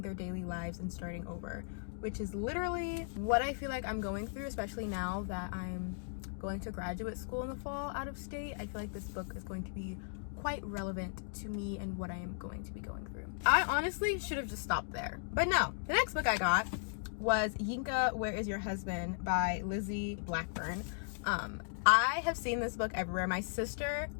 their daily lives and starting over, which is literally what I feel like I'm going through, especially now that I'm going to graduate school in the fall out of state. I feel like this book is going to be quite relevant to me and what I am going to be going through. I honestly should have just stopped there, but no. The next book I got was Yinka, Where Is Your Husband by Lizzie Blackburn. I have seen this book everywhere. My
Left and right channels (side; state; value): right; silent; digital silence